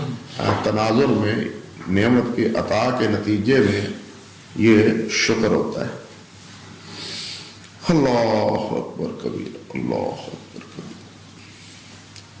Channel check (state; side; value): identical; both; correlation 1.00